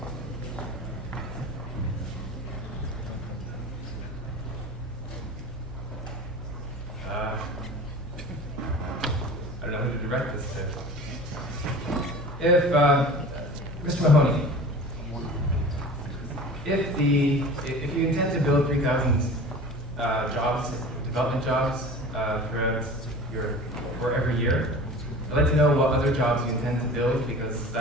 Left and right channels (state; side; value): normal; both; correlation 0.39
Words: I don't know who to direct this to. If, Mr. Mahoney, if you intend to build 3,000 jobs, development jobs, for every year, I'd like to know what other jobs you intend to build, because